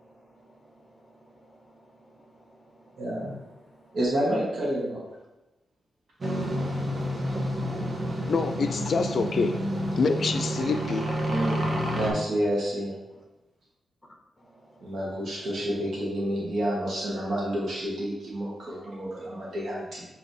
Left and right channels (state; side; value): normal; both; correlation 0.85